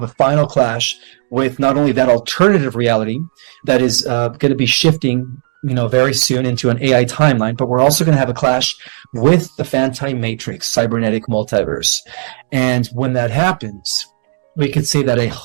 a final clash with not only that alternative reality that is going to be shifting, very soon into an AI timeline, but we're also going to have a clash with the Fantine Matrix, cybernetic multiverse. And when that happens, we could say that a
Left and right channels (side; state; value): left; silent; digital silence